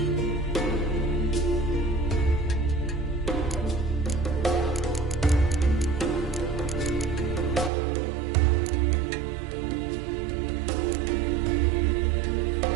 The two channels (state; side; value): drops out; left; at 7.7 s